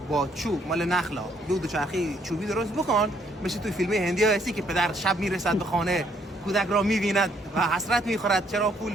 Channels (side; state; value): both; normal; correlation 0.68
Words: چوب مال نخلا بیو دوچرخه چوبی درست بکن مثل توی فیلم هندی ها هستی که پدر شب میرسد به خانه کودک را میبیند و حسرت میخورد چرا پول